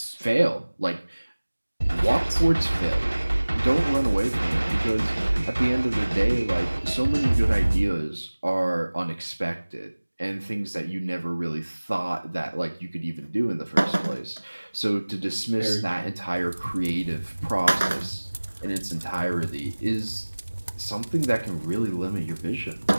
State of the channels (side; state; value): both; inverted; correlation -1.00